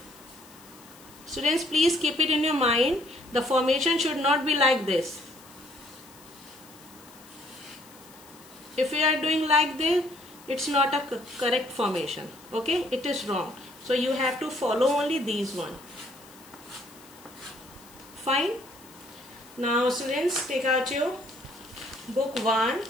Students, please keep it in your mind. The formation should not be like this. If you are doing like this, it's not a correct formation. Okay, it is wrong. So you have to follow only these one. Fine. Now students, take out your book 1.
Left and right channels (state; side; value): noise; left; hiss, 23 dB below the sound